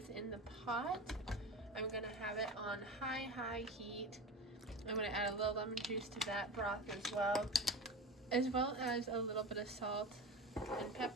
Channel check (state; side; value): normal; both; correlation 0.29